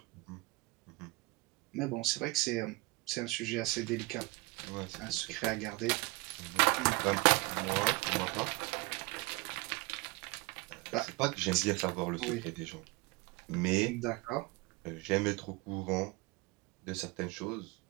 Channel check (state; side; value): quieter; left; 24.4 dB